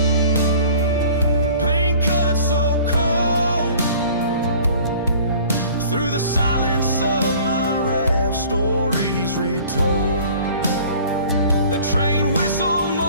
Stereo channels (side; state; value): both; inverted; correlation -0.49